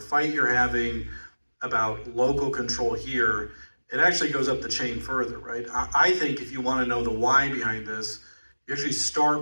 you're having about local control here, it actually goes up the chain further, right? I think if you want to know the why behind this, you actually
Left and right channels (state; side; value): inverted; both; correlation -1.00